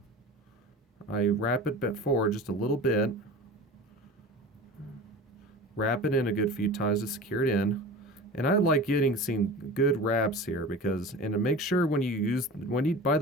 I wrap it forward just a little bit. Wrap it in a good few times to secure it in. And I like getting some good wraps here because, and to make sure when you by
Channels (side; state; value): both; normal; correlation 0.35